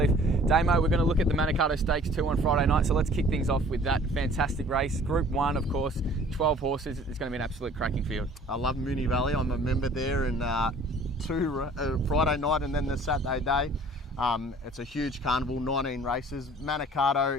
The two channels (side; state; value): both; normal; correlation 0.51